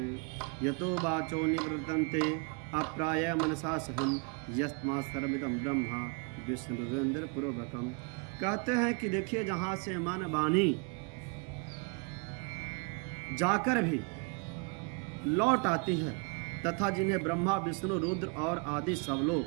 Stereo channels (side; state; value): left; quieter; 32.2 dB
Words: यतो वाचो निवृत्तन्ते अप्राय मनसा सहम यस्मा सर्वमिदं ब्रह्मा विष्णुरेंद्र पूर्वकम। कहते हैं कि देखिए जहाँ से मन वाणी जाकर भी लौट आती है तथा जिन्हें ब्रह्मा विष्णु रुद्र और आदि सब